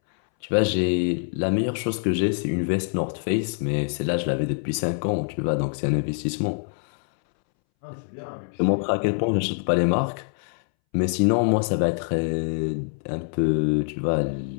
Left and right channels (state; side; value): silent; right; 62 dB below the other